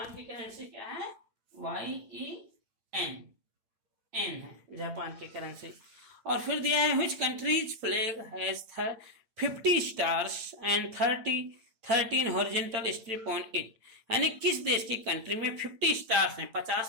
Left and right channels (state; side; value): late; left; 8.8 ms